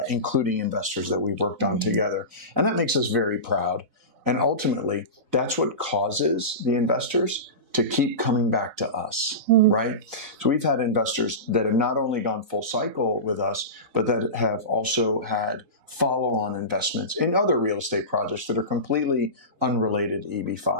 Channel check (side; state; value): left; late; 4.0 ms